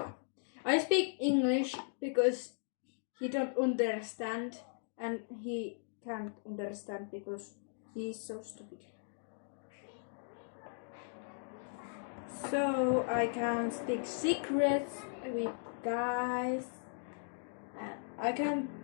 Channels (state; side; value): silent; right; digital silence